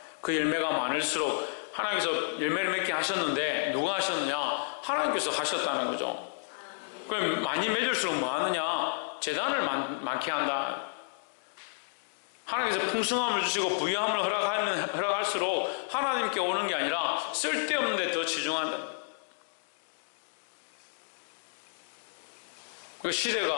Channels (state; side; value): silent; right; digital silence